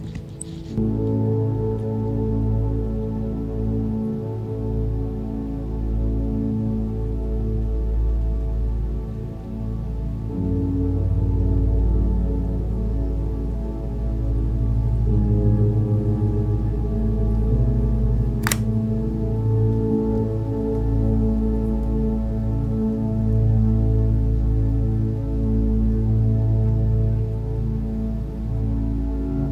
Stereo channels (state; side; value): identical; both; correlation 1.00